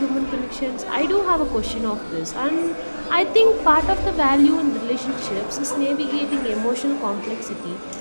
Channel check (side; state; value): both; inverted; correlation -1.00